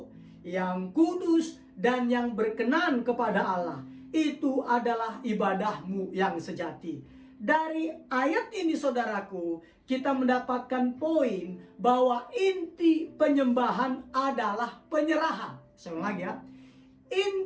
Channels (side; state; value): both; identical; correlation 1.00